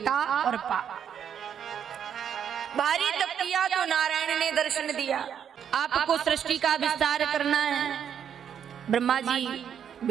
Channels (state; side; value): quieter; left; 8.5 dB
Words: और पा। भारी तप किया तो नारायण ने दर्शन दिया। आपको सृष्टि का विस्तार करना है, ब्रह्मा जी